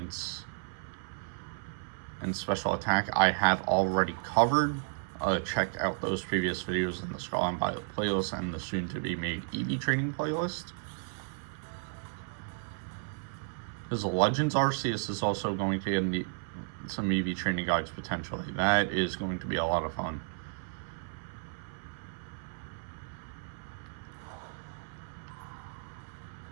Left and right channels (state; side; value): silent; left; 56 dB below the other